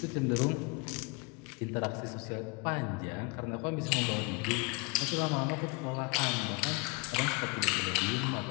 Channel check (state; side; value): quieter; right; 29.0 dB